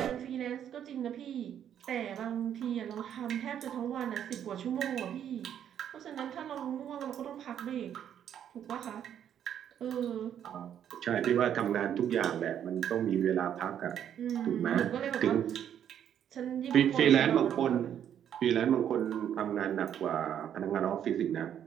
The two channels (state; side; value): quieter; left; 9.6 dB